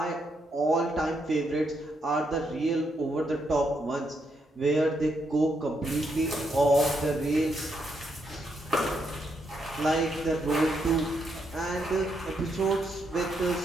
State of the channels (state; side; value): normal; both; correlation 0.78